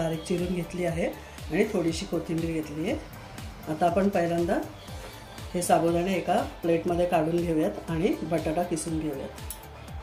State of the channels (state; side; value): identical; both; correlation 1.00